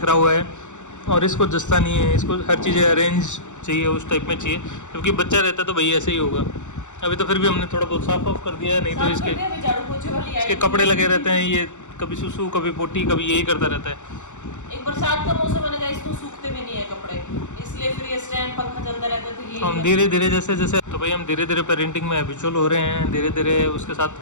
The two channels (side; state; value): right; late; 0.84 ms